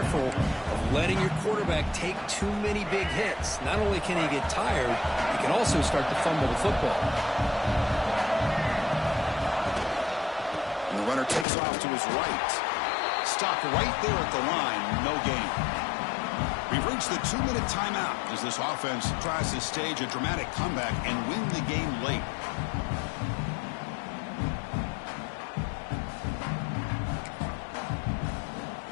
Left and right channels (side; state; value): right; drops out; at 11.5 s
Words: of letting your quarterback take too many big hits. Not only can he get tired, he can also start to fumble the football. And the runner takes off to his right. Stopped right there at the line. No gain. We've reached the 2-minute timeout as this offense tries to stage a dramatic comeback and win the game late.